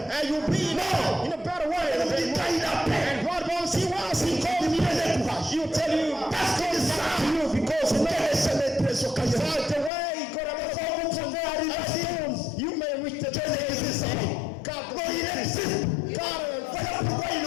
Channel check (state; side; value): drops out; right; at 9.9 s